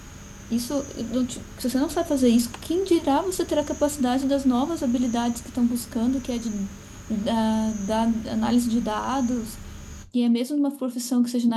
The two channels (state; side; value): identical; both; correlation 1.00